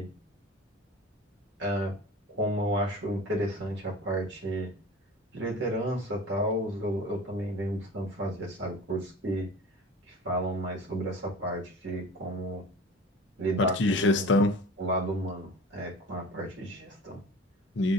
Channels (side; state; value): both; normal; correlation 0.38